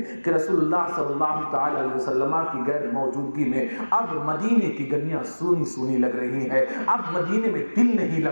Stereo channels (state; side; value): inverted; both; correlation -1.00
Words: کہ رسول اللہ صلی اللہ تعالی علیہ وسلم کی غیر موجودگی میں اب مدینے کی گلیاں سونی سونی لگ رہی ہیں، اب مدینے میں دل نہیں